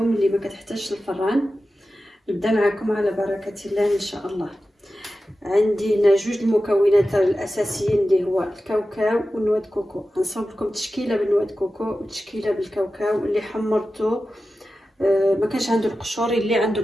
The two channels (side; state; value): both; normal; correlation 0.93